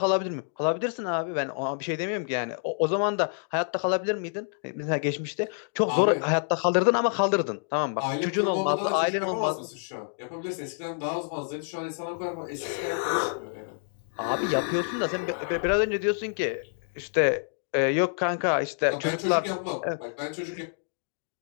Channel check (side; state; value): right; silent; digital silence